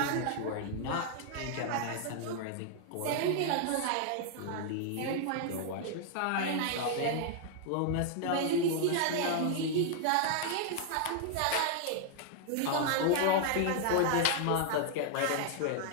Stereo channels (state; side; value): different; both; correlation 0.00